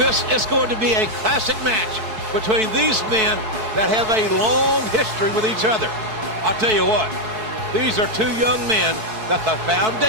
is going to be a classic match between these men that have a long history with each other. I'll tell you what, these are two young men that the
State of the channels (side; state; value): left; late; 4.6 ms